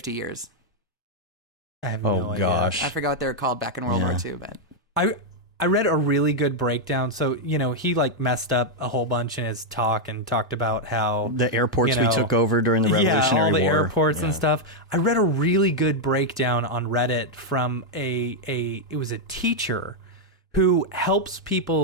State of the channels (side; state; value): both; normal; correlation -0.01